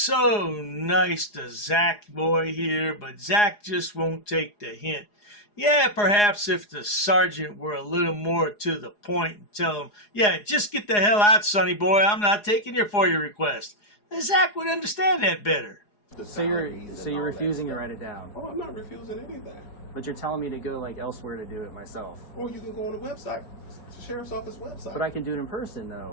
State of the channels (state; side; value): late; right; 4.8 ms